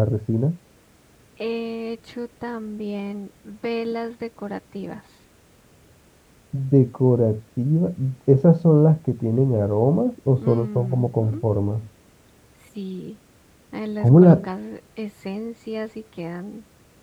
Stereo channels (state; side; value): identical; both; correlation 1.00